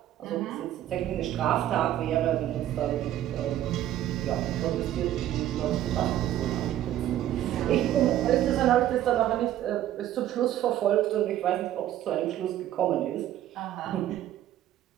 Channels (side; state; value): left; quieter; 12.5 dB